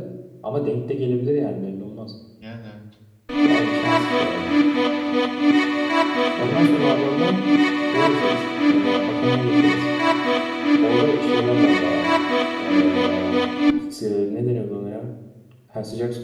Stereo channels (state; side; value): identical; both; correlation 1.00